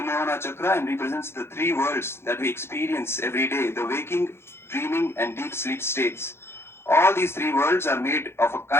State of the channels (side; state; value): right; late; 0.12 ms